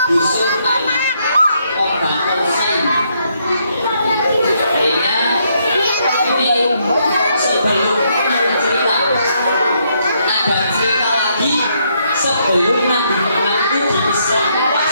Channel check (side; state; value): both; inverted; correlation -0.74